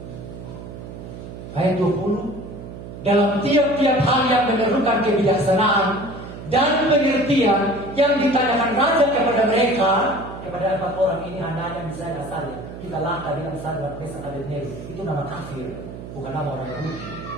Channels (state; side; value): noise; right; hum, 12 dB below the sound